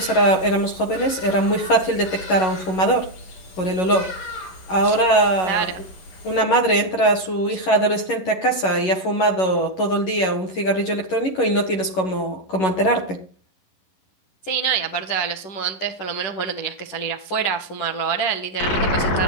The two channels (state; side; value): late; right; 11 ms